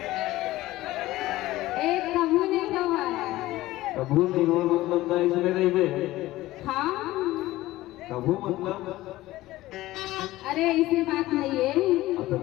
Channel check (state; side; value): quieter; right; 17.0 dB